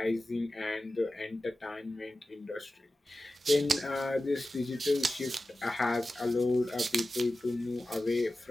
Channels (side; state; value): both; normal; correlation 0.94